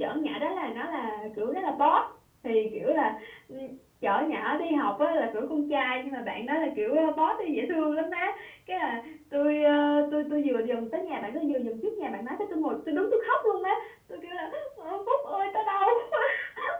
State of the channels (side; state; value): both; identical; correlation 1.00